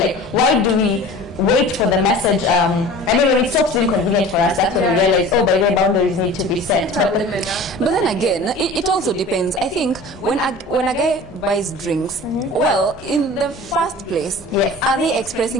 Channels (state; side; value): normal; both; correlation 0.40